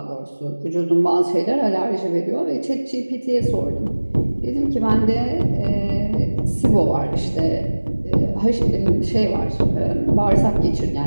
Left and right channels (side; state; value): both; inverted; correlation -1.00